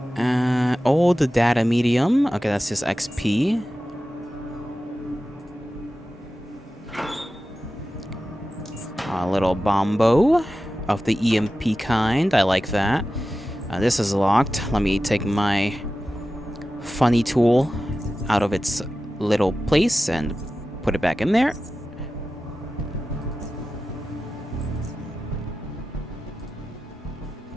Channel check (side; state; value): both; normal; correlation 0.94